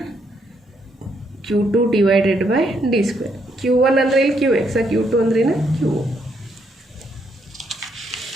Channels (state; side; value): normal; both; correlation 0.74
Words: Q2 / d². Q1 ಅಂದರೆ ಇಲ್ಲಿ QX, Q2 ಅಂದ್ರೆ Q.